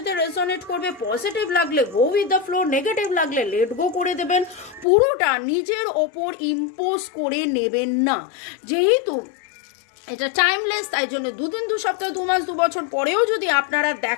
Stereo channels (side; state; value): right; drops out; at 4.9 s